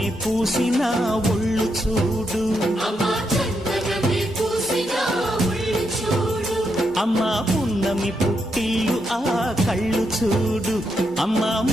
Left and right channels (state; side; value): normal; both; correlation 0.81